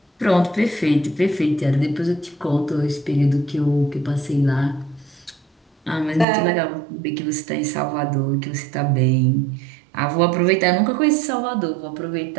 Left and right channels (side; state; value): left; drops out; at 6.2 s